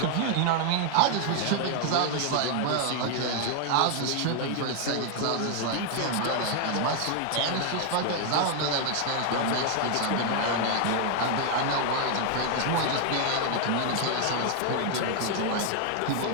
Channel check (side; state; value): both; different; correlation 0.00